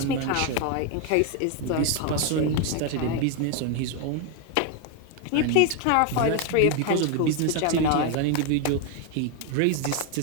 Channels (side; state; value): both; different; correlation 0.01